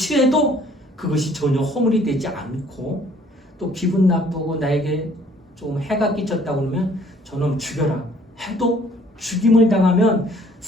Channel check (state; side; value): normal; both; correlation 0.58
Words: 그것이 전혀 허물이 되지 않고, 또 기분 나쁘고 나에게 좀 해가 끼쳤다고 그러면 저놈 죽여라 해도 죽임을 당하면